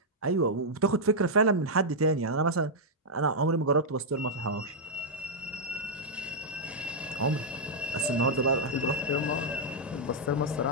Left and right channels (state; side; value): normal; both; correlation -0.05